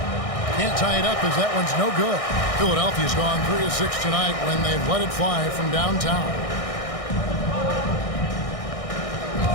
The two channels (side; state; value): right; late; 1.6 ms